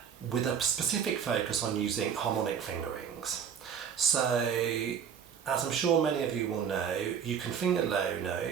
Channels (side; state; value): left; quieter; 7.7 dB